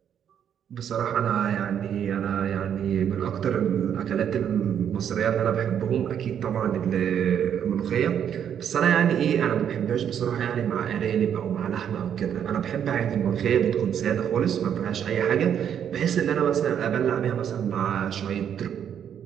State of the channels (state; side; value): quieter; left; 8.9 dB